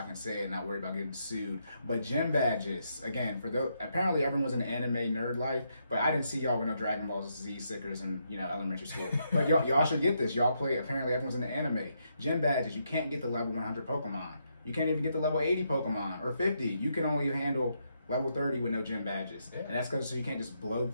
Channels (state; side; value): inverted; both; correlation -0.79